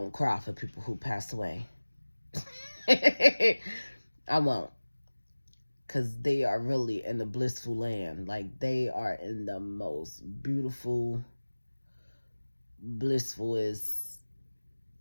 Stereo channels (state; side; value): inverted; both; correlation -1.00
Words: cry for people who passed away. I won't. Because they are really in the blissful land. Like, they are in the most beautiful blissful is